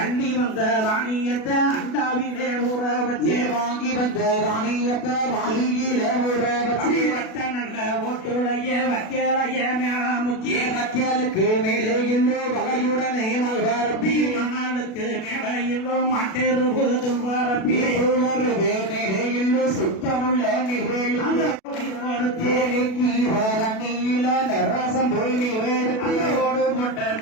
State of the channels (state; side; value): late; right; 37 ms